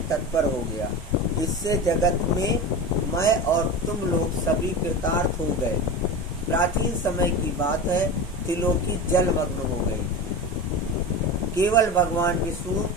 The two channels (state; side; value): normal; both; correlation 0.26